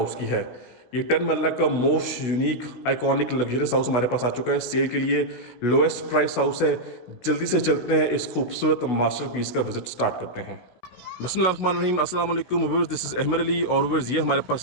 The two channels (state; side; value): late; right; 16 ms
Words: की है। ये 10 मरला का most unique iconic luxurious house हमारे पास आ चुका है सेल के लिए। लोएस्ट प्राइस हाउस है। जल्दी से चलते हैं, इस खूबसूरत मास्टरपीस का विजिट स्टार्ट करते हैं। बिस्मिल्लाहिर्रहमानिर्रहीम, अस्सलाम वालेकुम viewers, this is Ahmed Ali. और व्यूअर्स, ये हमारे